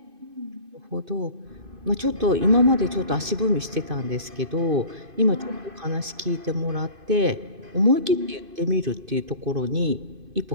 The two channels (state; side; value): late; left; 2.5 ms